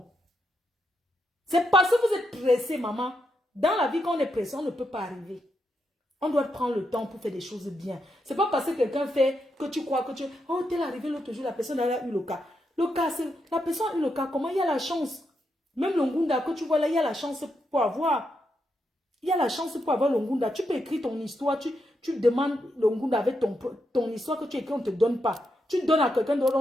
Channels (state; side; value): normal; both; correlation 0.82